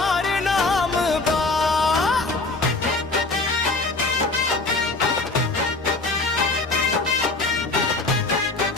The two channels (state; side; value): quieter; right; 3.3 dB